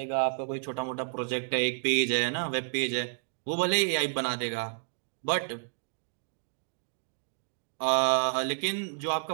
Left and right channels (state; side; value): silent; left; digital silence